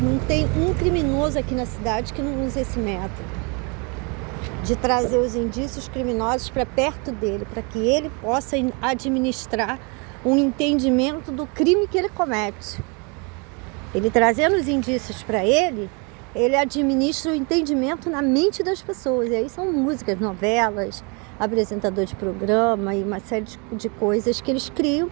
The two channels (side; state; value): left; quieter; 32.7 dB